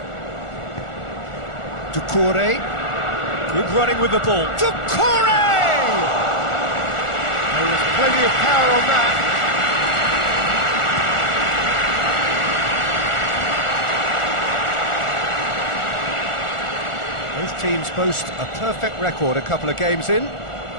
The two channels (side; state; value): right; late; 1.4 ms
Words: Doucouré, good running with the ball. Doucouré! There was plenty of power on that. Both teams boast a perfect record a couple of games in.